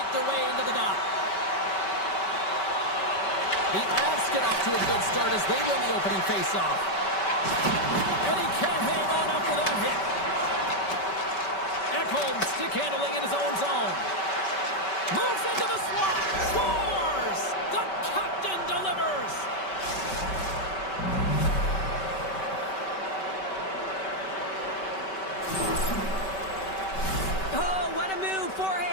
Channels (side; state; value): right; late; 5.2 ms